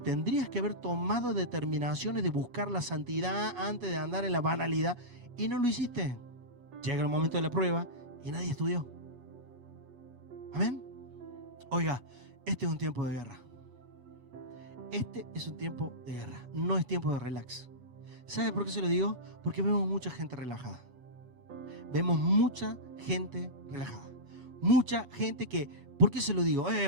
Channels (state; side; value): late; left; 8.2 ms